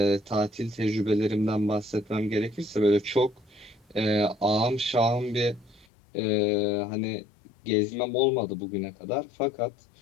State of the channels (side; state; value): right; drops out; at 5.9 s